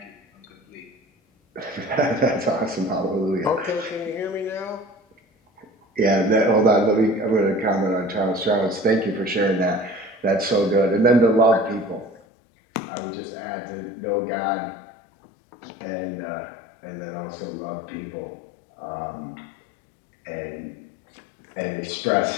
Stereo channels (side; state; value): right; drops out; at 12.2 s